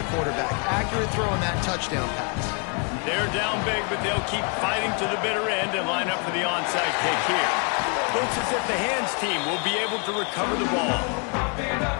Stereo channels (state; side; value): quieter; right; 36.3 dB